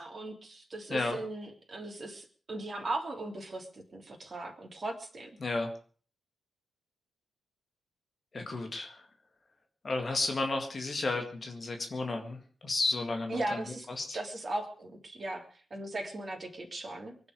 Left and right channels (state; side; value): normal; both; correlation 0.90